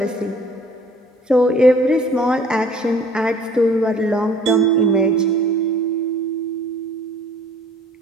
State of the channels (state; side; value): normal; both; correlation 0.54